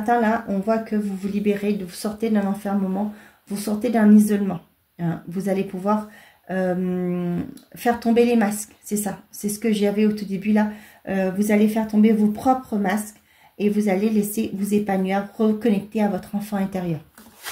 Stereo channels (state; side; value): identical; both; correlation 1.00